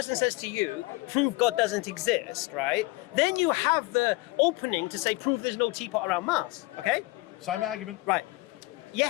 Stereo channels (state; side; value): quieter; right; 22.2 dB